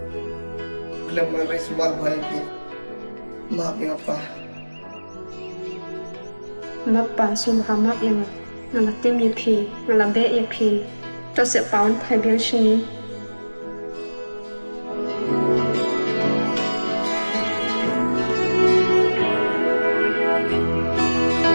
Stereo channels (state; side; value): inverted; both; correlation -1.00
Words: Khlem maris bar bhai maphi apa? Mappa sumhamak yang ngalatim yapi, ngalabe yapi. Cho sẽ báo phải biến sinh